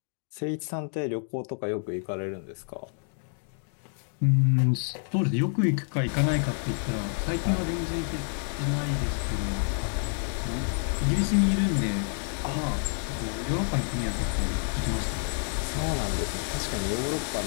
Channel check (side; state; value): right; silent; 59 dB below the other